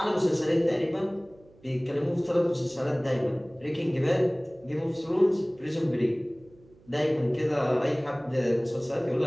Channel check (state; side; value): noise; right; hum, 27 dB below the sound